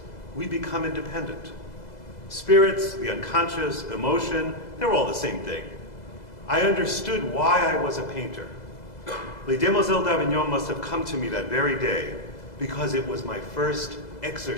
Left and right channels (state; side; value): late; right; 2.0 ms